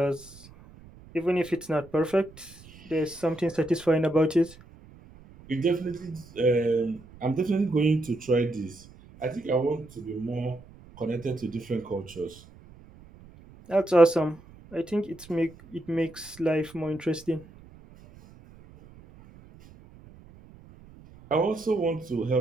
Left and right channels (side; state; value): right; noise; rumble, 22 dB below the sound